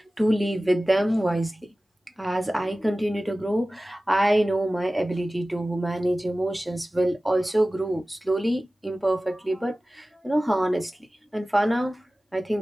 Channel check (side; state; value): both; normal; correlation 0.97